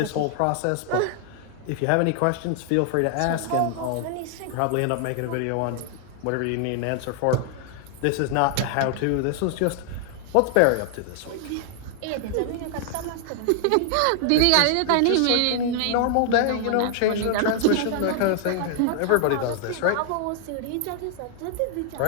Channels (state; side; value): different; both; correlation 0.00